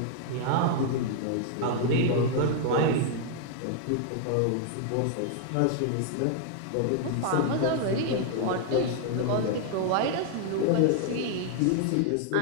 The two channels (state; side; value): different; both; correlation 0.00